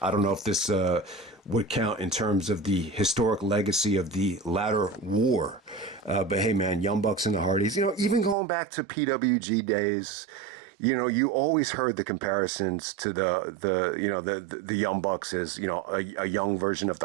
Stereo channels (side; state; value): left; drops out; at 8.3 s